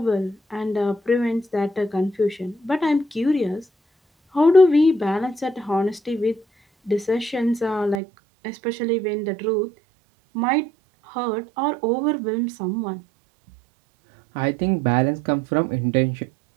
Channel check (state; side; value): drops out; left; at 8.0 s